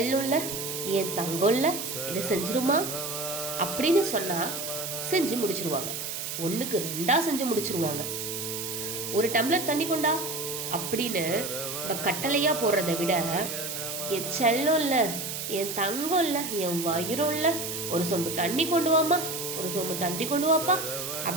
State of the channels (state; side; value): noise; right; hiss, 5 dB below the sound